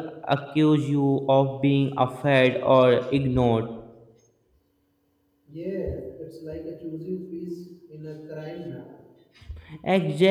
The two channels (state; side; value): identical; both; correlation 1.00